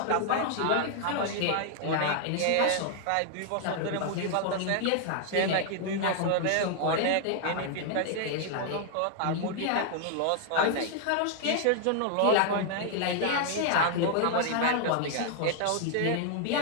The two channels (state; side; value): different; both; correlation 0.00